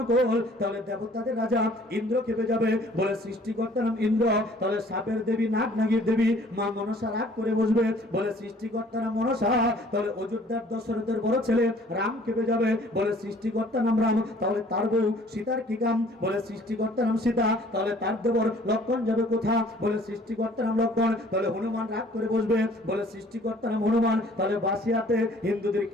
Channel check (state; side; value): normal; both; correlation 0.55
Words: তাহলে দেবতাদের রাজা ইন্দ্র খেপে যাবে। বলে সৃষ্টিকর্তা নাম ইন্দ্র, তাহলে সাপের দেবী, নাগ নাগির দেবী মা মনসা রাগ করে বসবে। বলে সৃষ্টিকর্তার নাম মনসা, তাহলে অযোধ্যার দশরথের বড় ছেলে রাম কেঁপে যাবে, বলে সৃষ্টিকর্তার নাম রাম, তাহলে তার বউ সীতার কি কাম, বলে সৃষ্টিকর্তার নাম সীতা, তাহলে তার দেবর লক্ষণ যাবে কোথা, বলে সৃষ্টিকর্তার নাম লক্ষণ, তাহলে হনুমান রাগ করে বসবে, বলে সৃষ্টিকর্তার নাম হনুমান, তাহলে বাসিয়াতে হিন্দুদের